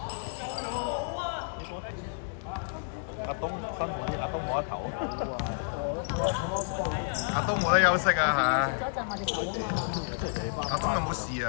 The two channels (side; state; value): right; silent; digital silence